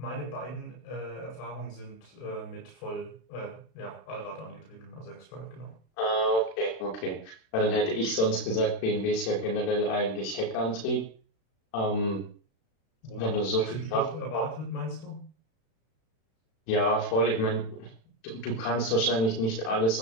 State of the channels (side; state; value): right; late; 36 ms